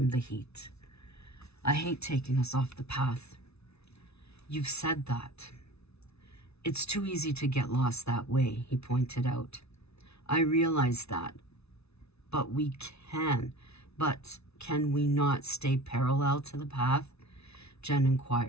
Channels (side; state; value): right; late; 0.80 ms